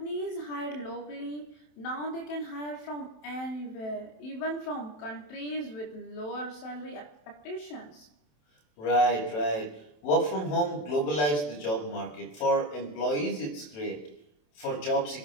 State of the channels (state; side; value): late; right; 27 ms